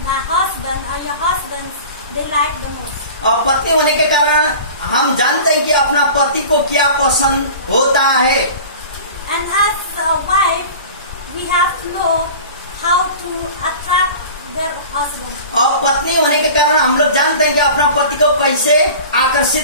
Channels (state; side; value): inverted; both; correlation -0.39